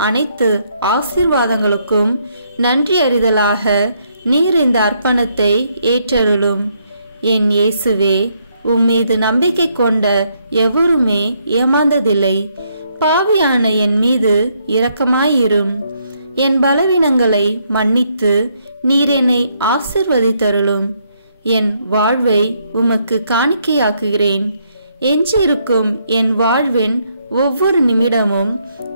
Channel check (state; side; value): inverted; both; correlation -0.73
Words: அனைத்து ஆசீர்வாதங்களுக்கும் நன்றி அறிதலாக நீர் இந்த அர்ப்பணத்தை ஏற்றருளும். என் இயேசுவே, உம்மீது நம்பிக்கை கொண்ட எவருமே ஏமாந்ததில்லை. பாவியான என் மீது இரக்கமாயிரும். என் பலவீனங்களை மன்னித்து நீர் என்னை ஆசிர்வதித்தருளும். என் வாழ்வை உமக்கு காணிக்கையாக்குகிறேன். எஞ்சியிருக்கும் என் வாழ்வின் ஒவ்வொரு நிமிடமும்